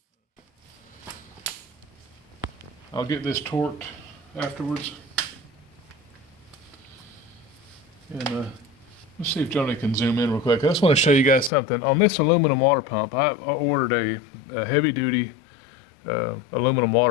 I'll get this torqued afterwards. And let's see if Joni can zoom in real quick. I just want to show you guys something. On this aluminum water pump, I ordered a heavy-duty aluminum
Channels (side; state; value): right; drops out; at 11.5 s